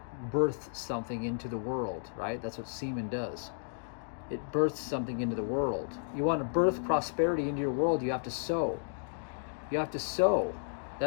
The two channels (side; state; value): right; silent; digital silence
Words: births something into the world, right? That's what semen does. It births something into the world. You want to birth prosperity into your world, you have to sow. You have to sow.